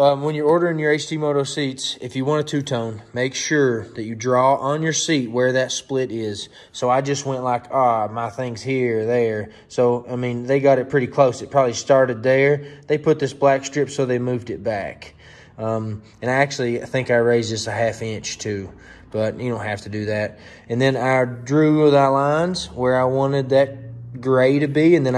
when you're ordering your HT Moto seats, if you want a two-tone, make sure that you draw on your seat where that split is. So I just went like, my thing's here, there. So, I mean, they got it pretty close. It probably started there. They put this black strip, so they moved it back. And I think I raised this a 1/2 inch too. But you don't have to do that. And then I drew the lines where I wanted that gray to be, and then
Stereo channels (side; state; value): both; identical; correlation 1.00